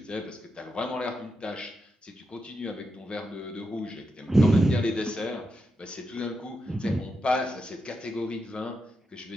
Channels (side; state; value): both; normal; correlation 0.86